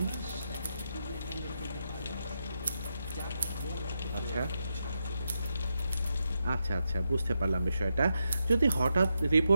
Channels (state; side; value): inverted; both; correlation -0.85